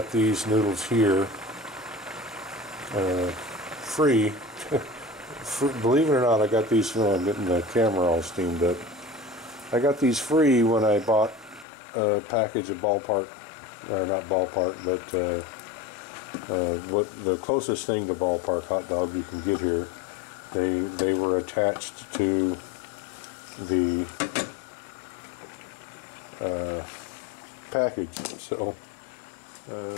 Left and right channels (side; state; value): right; drops out; at 11.7 s